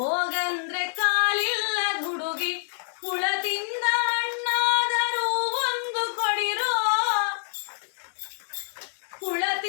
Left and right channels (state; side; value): silent; right; digital silence